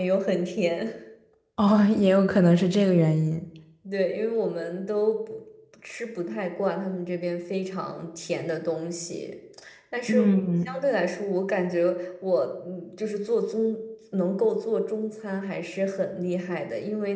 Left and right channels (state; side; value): identical; both; correlation 1.00